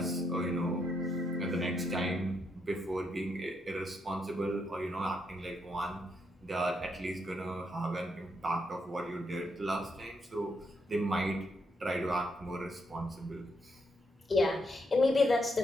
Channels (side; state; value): both; normal; correlation 0.78